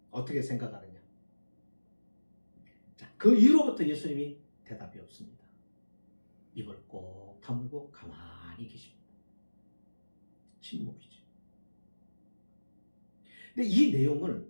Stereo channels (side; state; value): both; inverted; correlation -1.00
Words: 어떻게 생각하느냐? 자, 그 이후로부터 예수님이 대답이 없습니다. 입을 꼭 다물고 가만히 계십니다. 침묵이죠. 근데 이 내용을